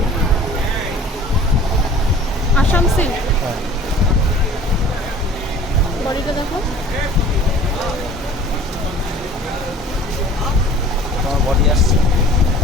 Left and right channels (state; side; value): normal; both; correlation 0.47